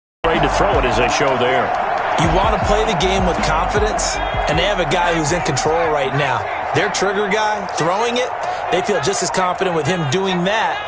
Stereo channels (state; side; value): identical; both; correlation 1.00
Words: Ready to throw it as they show there. You want to play the game with confidence, and they have a guy who's in control right now. Their trigger guy, throwing it, they feel just as confident with him doing that